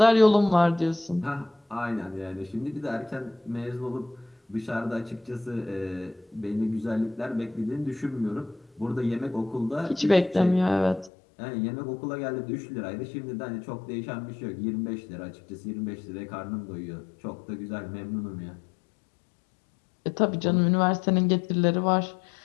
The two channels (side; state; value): right; drops out; at 11.1 s